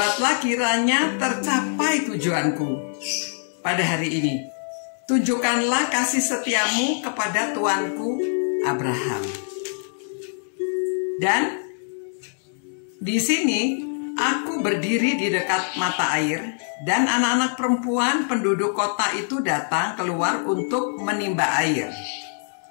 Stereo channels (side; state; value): right; silent; digital silence